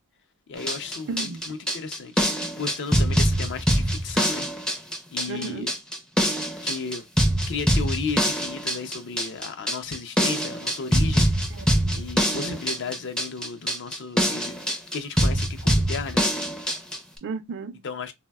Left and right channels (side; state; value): both; normal; correlation 0.69